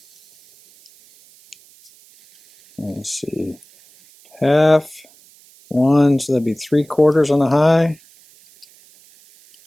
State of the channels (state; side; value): noise; right; hiss, 28 dB below the sound